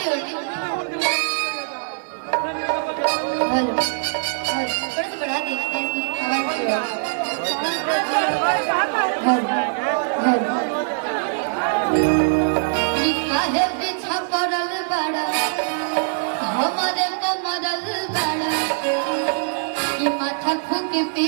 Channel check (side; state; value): left; silent; digital silence